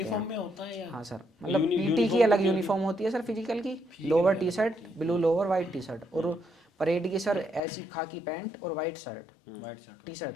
हैं। यूनिफॉर्म में होता है या हाँ सर, मतलब PT की यूनिफॉर्म अलग कितनी होती यूनिफॉर्म होती है सर फिजिकल की, फिजिकल लोअर की टी अलग शर्ट होती है? Blue lower white T shirt, और परेड की सर ऐसी खाकी पैंट और white shirt, white shirt. T shirt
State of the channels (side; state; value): right; drops out; at 7.6 s